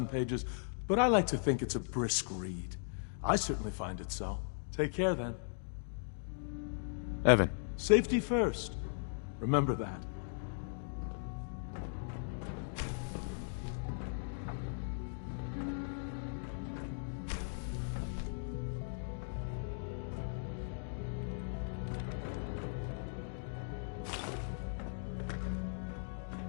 pages, but I like to think it's a brisk read. I certainly find it so. Take care, then. Evan. Safety first. Remember that.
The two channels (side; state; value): right; silent; digital silence